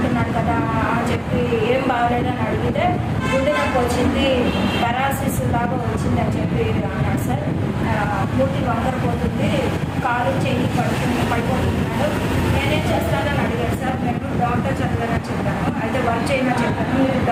కదా అని చెప్పి ఏం బాగాలేదని అడిగితే గుండె నొప్పి వచ్చింది, పెరాలసిస్ లాగా వచ్చింది అని చెప్పి అన్నాడు సార్. మూతి వంకరపోతుంది, కాలు చెయ్యి పడిపోతున్నాడు. నేనేం చేస్తానని అడిగాడు సార్. నేను డాక్టర్ చదివానని చెప్పాను. అయితే వర్క్ చేయమని చెప్పాను. మీరు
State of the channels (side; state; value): both; identical; correlation 1.00